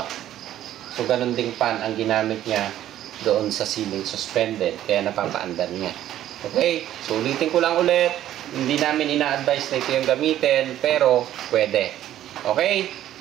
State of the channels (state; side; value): quieter; left; 12.4 dB